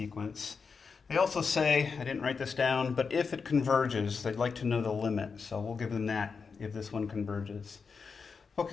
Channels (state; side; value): quieter; right; 5.3 dB